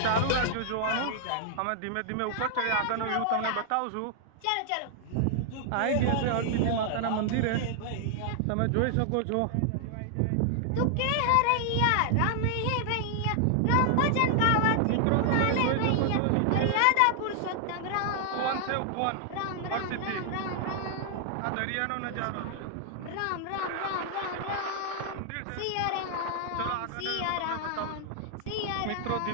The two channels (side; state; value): both; different; correlation 0.00